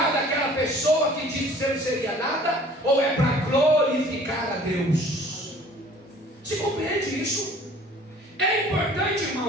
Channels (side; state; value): both; normal; correlation 0.51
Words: daquela pessoa que disse que você não seria nada, ou é para glorificar a Deus? Se compreende isso? É importante,